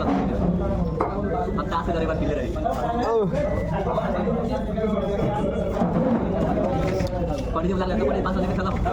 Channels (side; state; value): both; identical; correlation 1.00